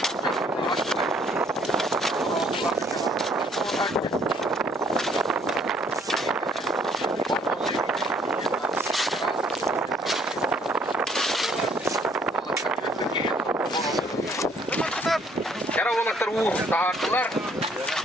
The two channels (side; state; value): both; normal; correlation 0.63